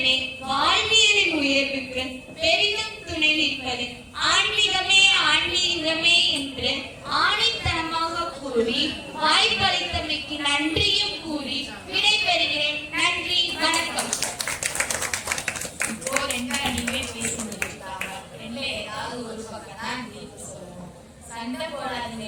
வாழ்வியலின் உயர்வுக்கு பெரிதும் துணை நிற்பது ஆன்மீகமே ஆன்மீகமே என்று ஆணித்தனமாக கூறி வாய்ப்பளித்தமைக்கு நன்றியும் கூறி விடைபெறுகிறேன். நன்றி, வணக்கம். இப்போ ரெண்டா நீங்களே பேசிட்டு இருக்காங்க. ரெண்டுல ஏதாவது ஒரு பக்கம் தான் தீர்ப்பு சொல்லணும். சண்டை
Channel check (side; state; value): both; identical; correlation 1.00